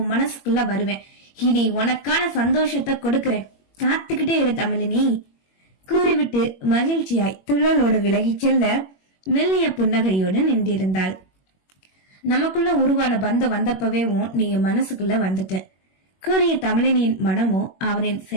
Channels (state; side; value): late; right; 21 ms